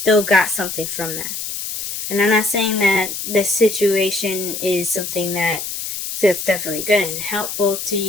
got something from that. And I'm not saying that this situation is something that's definitely good and helpful to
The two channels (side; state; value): left; noise; hiss, 6 dB below the sound